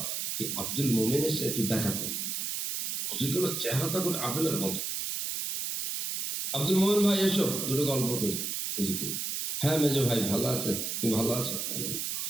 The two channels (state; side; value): noise; right; hiss, 2 dB below the sound